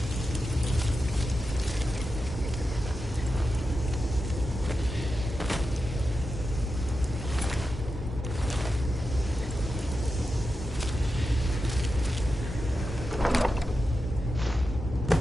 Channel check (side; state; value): both; normal; correlation 0.90